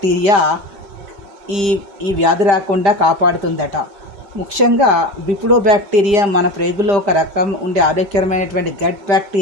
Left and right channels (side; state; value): left; late; 5.0 ms